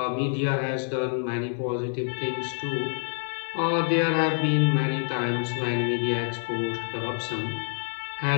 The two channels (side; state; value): right; silent; digital silence